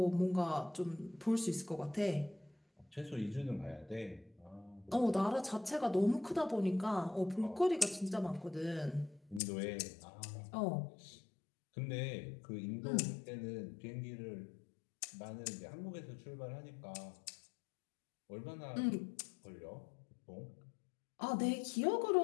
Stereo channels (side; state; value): right; drops out; at 9.4 s